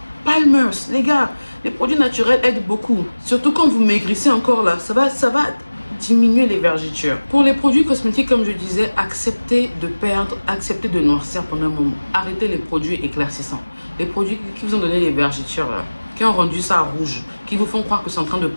Palmer's. Les gars, les produits naturels aident beaucoup. Surtout quand vous maigrissez encore là, ça va diminuer les vergitures. Pour les produits cosmétiques, comme je disais, acceptez de perdre, acceptez de noircir pendant un moment. Arrêtez les produits éclaircissants. Les produits qui vous ont donné les vergitures là, qui ont rendu ça rouge, qui vous font croire que c'est en train de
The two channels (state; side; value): inverted; both; correlation -1.00